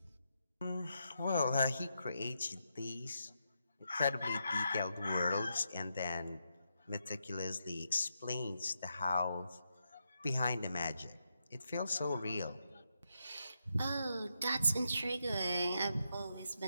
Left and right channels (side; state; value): both; inverted; correlation -0.83